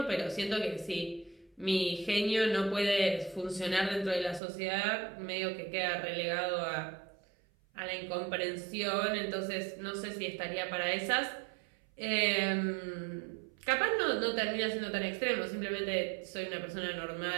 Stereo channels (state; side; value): drops out; left; at 4.4 s